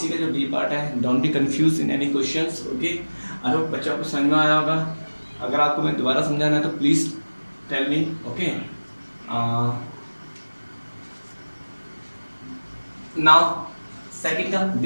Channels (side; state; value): both; inverted; correlation -1.00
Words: का जो बी पार्ट है, don't be confuse in any questions okay. I hope बच्चों को समझ में आया होगा। अगर आपको मैं दोबारा समझाना है तो please tell me okay. Now second का